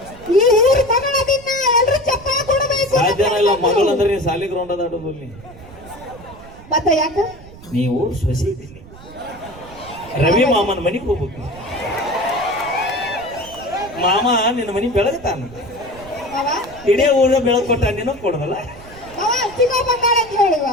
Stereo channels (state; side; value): noise; right; rumble, 19 dB below the sound